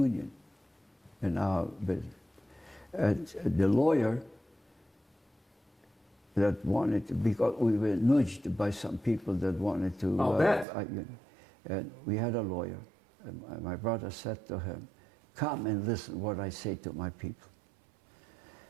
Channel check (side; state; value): left; drops out; at 10.7 s